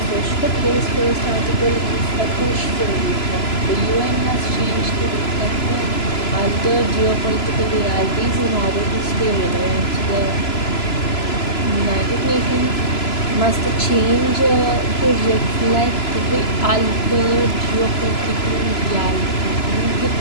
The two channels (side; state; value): right; late; 3.0 ms